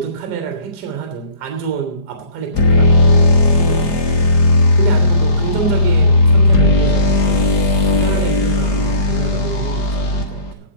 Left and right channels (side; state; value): right; late; 5.0 ms